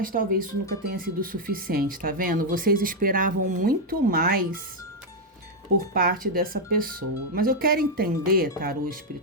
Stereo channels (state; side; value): normal; both; correlation 0.00